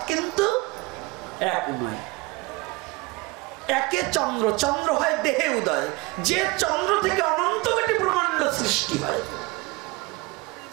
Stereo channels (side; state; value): left; quieter; 23.6 dB